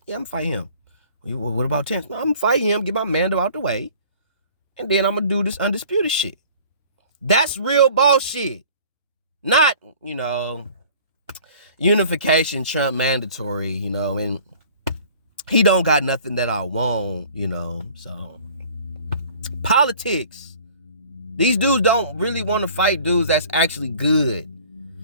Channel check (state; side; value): inverted; both; correlation -0.49